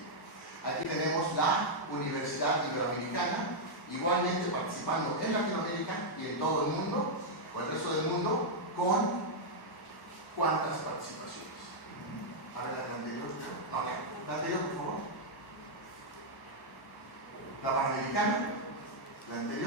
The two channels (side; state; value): right; late; 1.0 ms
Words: Aquí tenemos la Universidad Iberoamericana, igualmente participando en Latinoamérica y en todo el mundo, o el resto del mundo, con cuántas participaciones. A ver, la anterior. No, la anterior, por favor. La Panamericana, la